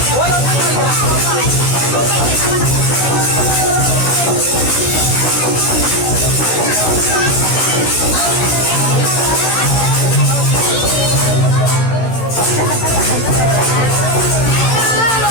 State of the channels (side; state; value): right; late; 16 ms